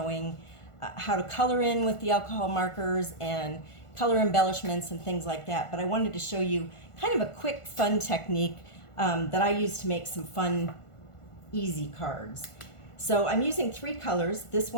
how to color in with the alcohol markers and color embellishments and things like that, but I wanted to show you kind of a quick fun technique that I use to make some fun easy cards. So I'm using three colors. This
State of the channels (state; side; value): late; right; 1.5 ms